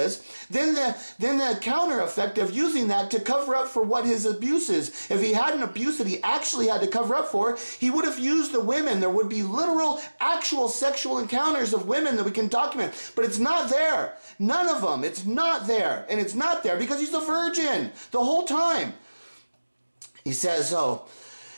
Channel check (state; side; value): inverted; both; correlation -1.00